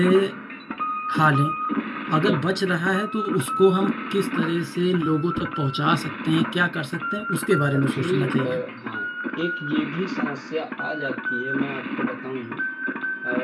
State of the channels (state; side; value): identical; both; correlation 1.00